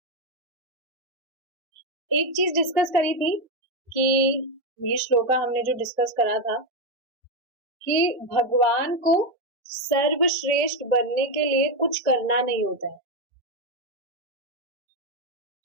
एक चीज डिस्कस करी थी कि ये श्लोका हमने जो डिस्कस करा था कि भगवान को सर्वश्रेष्ठ बनने के लिए कुछ करना नहीं होता है।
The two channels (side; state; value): both; normal; correlation 0.07